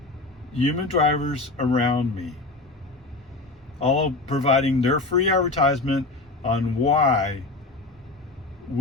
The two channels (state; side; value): quieter; right; 3.1 dB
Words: human drivers around me, all providing their free advertisement on why